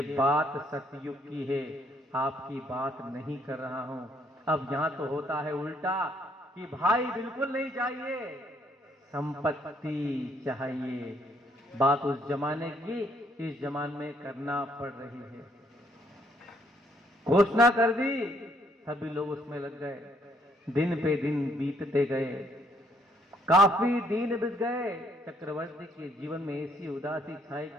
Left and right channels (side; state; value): both; normal; correlation 0.69